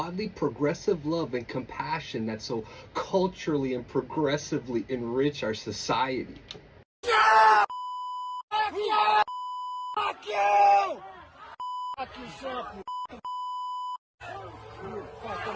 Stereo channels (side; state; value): both; identical; correlation 1.00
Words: progressive love and compassion that so culturally and progressively enrich our society. Yeah! Fuck you! Fuck you! Fuck yourself, you